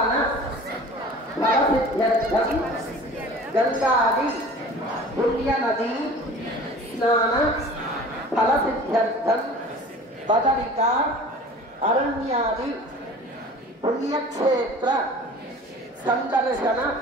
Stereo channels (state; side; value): normal; both; correlation 0.42